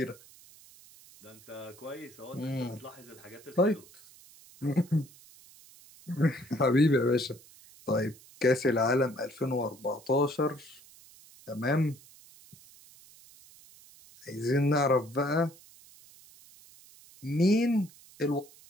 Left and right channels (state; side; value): noise; right; hiss, 23 dB below the sound